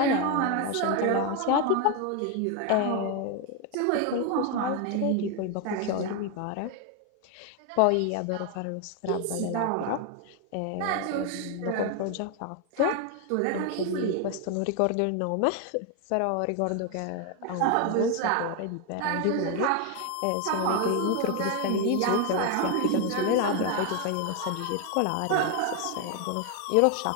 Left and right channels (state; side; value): different; both; correlation 0.01